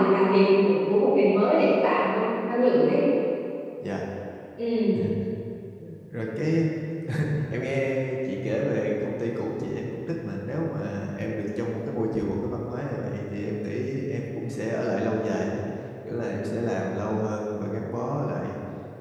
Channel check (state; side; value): identical; both; correlation 1.00